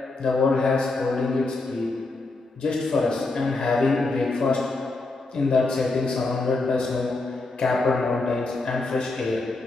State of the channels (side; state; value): right; quieter; 3.3 dB